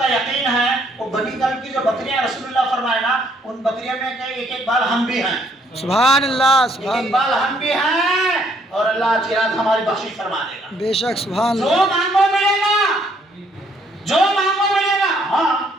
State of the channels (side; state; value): both; normal; correlation 0.67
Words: یقین ہے وہ بنی کلب کی جو بکریاں رسول اللہ فرمائے نا ان بکریوں میں ایک ایک بال ہم بھی ہیں سبحان اللہ ایک سبحان ایک اللہ بال ہم بھی ہیں اور اللہ آج کی رات ہماری بخشش فرما دے گا بے شک سبحان جو اللہ مانگو ملے گا جو مانگو ملے گا ہاں